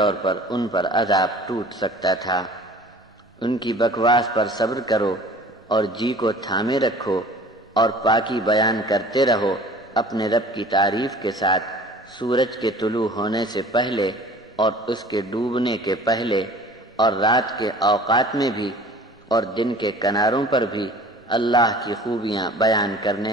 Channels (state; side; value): normal; both; correlation 0.46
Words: پر ان پر عذاب ٹوٹ سکتا تھا۔ ان کی بکواس پر صبر کرو اور جی کو تھامے رکھو اور پاکی بیان کرتے رہو اپنے رب کی تعریف کے ساتھ، سورج کے طلوع ہونے سے پہلے اور اس کے ڈوبنے کے پہلے اور رات کے اوقات میں بھی اور دن کے کناروں پر بھی اللہ کی خوبیاں بیان